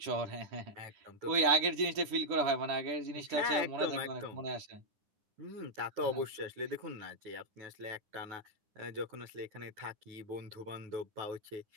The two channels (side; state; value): left; late; 9.9 ms